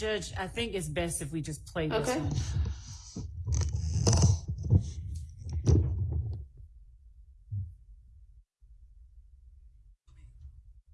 I think it's best if we just play this one.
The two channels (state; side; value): identical; both; correlation 1.00